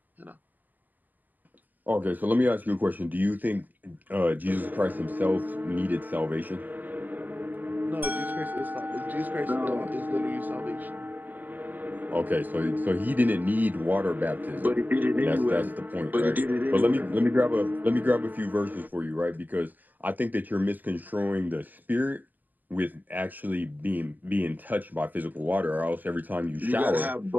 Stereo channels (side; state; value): left; late; 0.084 ms